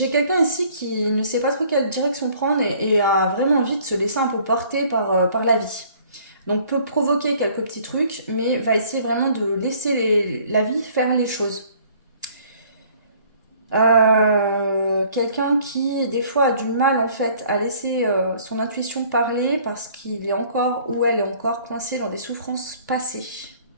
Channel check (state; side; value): inverted; both; correlation -0.56